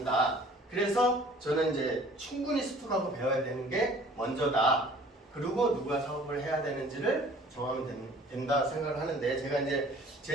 그래서 저는 이제 충분히 습득하고 배워야 되는 게 먼저다. 그리고 누가 사업을 해야 되는지를 정하면 된다 생각을 하는데, 제가 이제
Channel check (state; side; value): normal; both; correlation 0.51